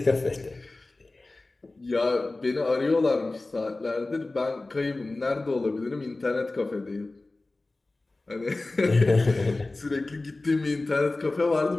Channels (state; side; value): quieter; right; 3.1 dB